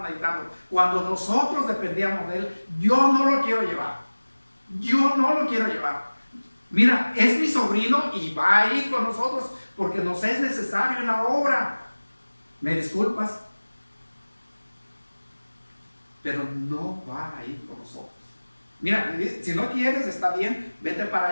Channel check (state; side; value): inverted; both; correlation -1.00